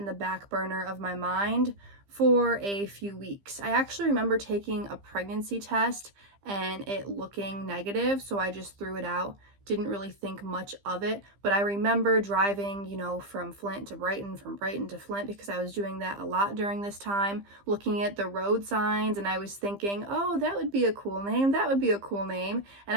the back burner of my mind for a few weeks. I actually remember taking a pregnancy test and it looking negative, so I just threw it out. Didn't really think much of it, but I remember driving, from Flint to Brighton, from Brighton to Flint, because I was doing that a lot during this time, looking at the road signs, and I was thinking, oh, that would be a cool name, that would be a cool name, and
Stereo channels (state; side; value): late; left; 15 ms